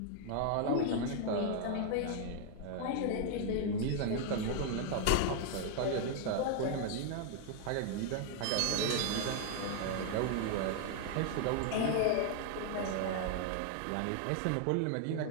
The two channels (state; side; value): different; both; correlation 0.00